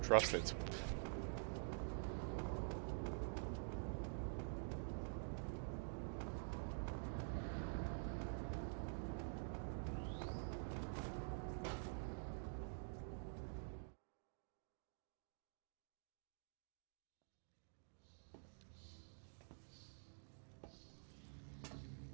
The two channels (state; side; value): silent; left; digital silence